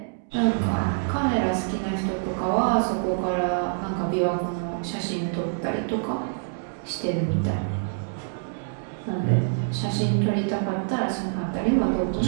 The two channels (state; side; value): silent; left; digital silence